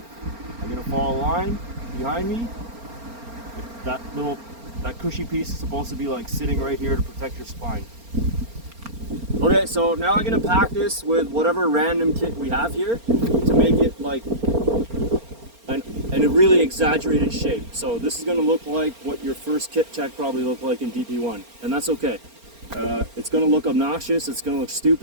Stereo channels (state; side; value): late; left; 4.3 ms